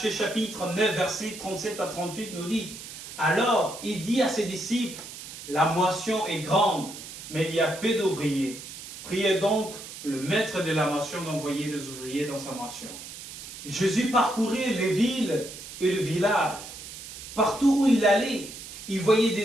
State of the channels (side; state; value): right; noise; hiss, 12 dB below the sound